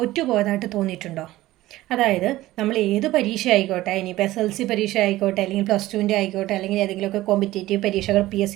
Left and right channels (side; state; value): left; quieter; 16.5 dB